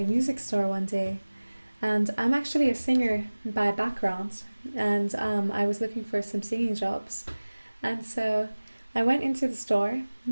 music store one day. And I'm actually a singer by background, and I was looking for some singing jobs. And so I went into the store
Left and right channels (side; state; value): both; inverted; correlation -1.00